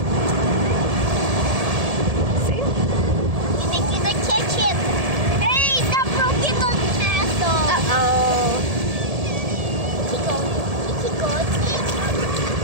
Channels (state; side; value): late; left; 1.7 ms